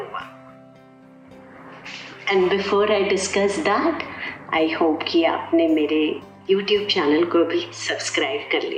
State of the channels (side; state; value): both; identical; correlation 1.00